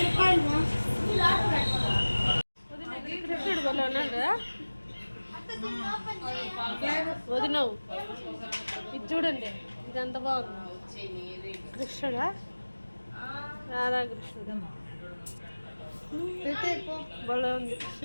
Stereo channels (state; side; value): inverted; both; correlation -1.00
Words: వదినవు ఇది చూడండి, ఇది ఎంత బాగుంది. కృష్ణుడా రాధాకృష్ణుడా భలే ఉంది.